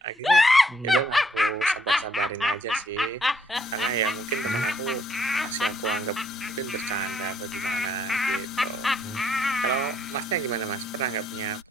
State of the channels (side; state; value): both; normal; correlation 0.68